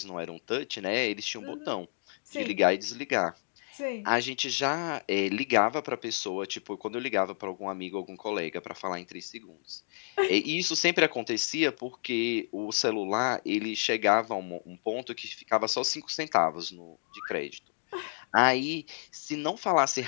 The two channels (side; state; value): right; silent; digital silence